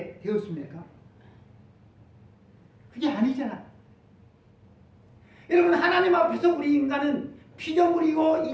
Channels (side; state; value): both; identical; correlation 1.00